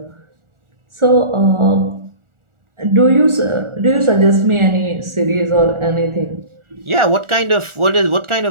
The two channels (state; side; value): late; left; 1.4 ms